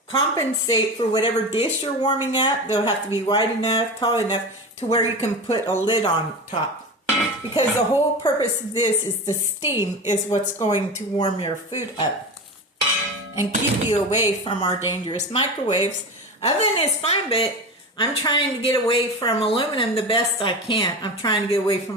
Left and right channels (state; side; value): normal; both; correlation 0.27